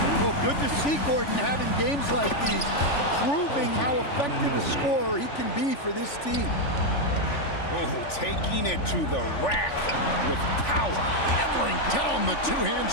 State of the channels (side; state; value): right; late; 3.5 ms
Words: Well, good to see Gordon having games like these, proving how effective a scorer he can be for this team. Oh, taking it to the rack with power. Hammering down the two-hand